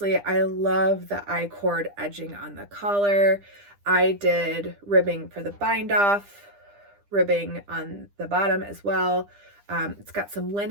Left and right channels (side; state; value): left; late; 9.9 ms